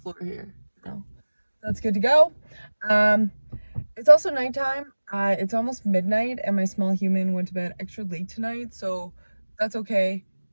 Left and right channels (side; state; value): both; inverted; correlation -1.00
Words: here. No, that's good to go. Um, it's also nighttime. It's almost midnight, and my small human went to bed extra late tonight, so that's okay.